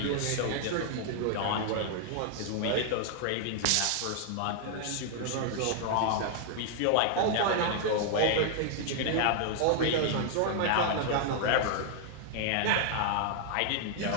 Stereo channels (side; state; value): both; different; correlation 0.00